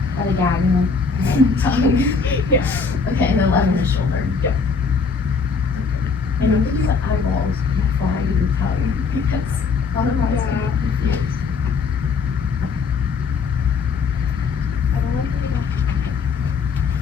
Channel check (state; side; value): quieter; right; 5.0 dB